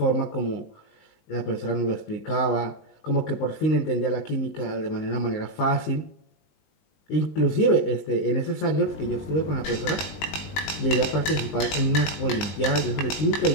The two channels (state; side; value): late; right; 20 ms